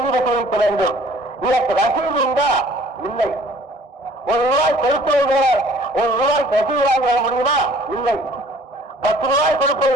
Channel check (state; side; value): late; left; 1.6 ms